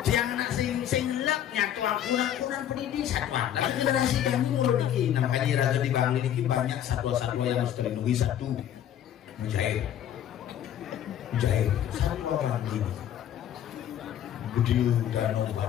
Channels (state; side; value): quieter; right; 10.6 dB